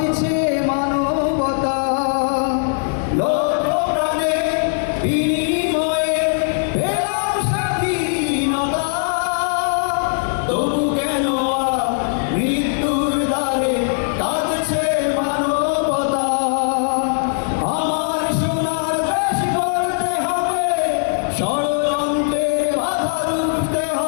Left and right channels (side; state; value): right; silent; 66 dB below the other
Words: মানবতা। লক্ষ প্রাণের বিনিময়ে পেলাম স্বাধীনতা, তবু কেন আজ মৃত্যুর দ্বারে কাঁদছে মানবতা। আমার সোনার দেশ গড়তে হবে, ষড়যন্ত্রের বাধা রুখতে